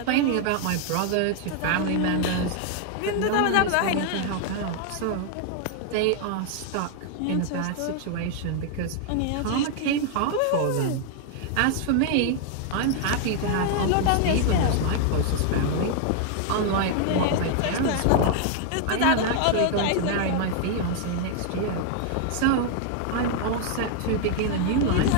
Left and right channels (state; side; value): different; both; correlation 0.00